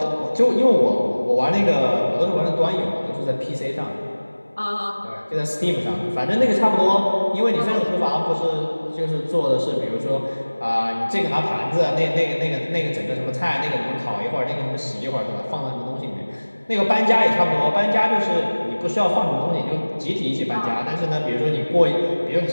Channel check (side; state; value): both; inverted; correlation -1.00